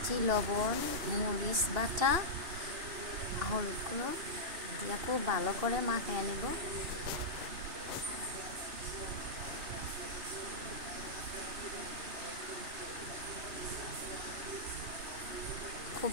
লবণ, মরিচ বাটা, হলুদ গুঁড়ো দিয়ে খুব ভালো করে মাখিয়ে নেব।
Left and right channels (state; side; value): late; left; 2.8 ms